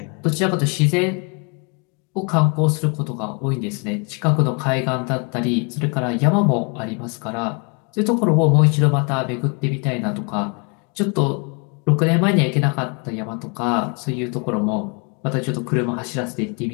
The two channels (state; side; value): quieter; right; 34.9 dB